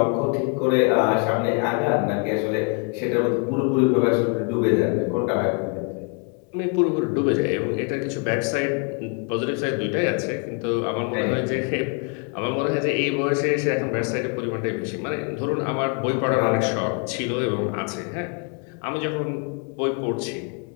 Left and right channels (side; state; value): right; quieter; 36.1 dB